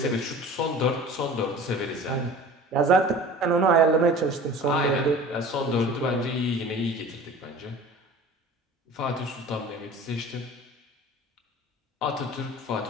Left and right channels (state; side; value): normal; both; correlation 0.41